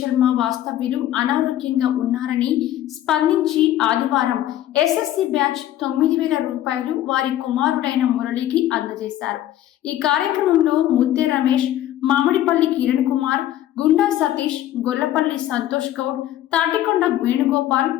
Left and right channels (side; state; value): right; quieter; 12.9 dB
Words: వాస్తవ్యులు అనారోగ్యంగా ఉన్నారని స్పందించి ఆదివారం ఎస్ఎస్సి బ్యాచ్ 9,000 రూపాయలు వారి కుమారుడైన మురళికి అందజేశారు. ఈ కార్యక్రమంలో ముత్తే రమేష్, మామిడిపల్లి కిరణ్ కుమార్, గుండా సతీష్, గొల్లపల్లి సంతోష్ గౌడ్, తాటికొండ వేణుగోపాల్,